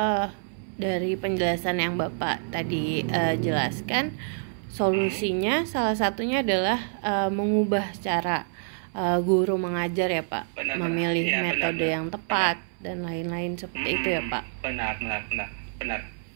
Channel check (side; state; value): left; silent; 60 dB below the other